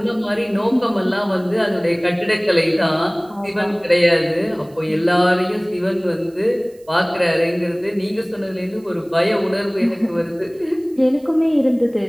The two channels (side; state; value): right; noise; hiss, 30 dB below the sound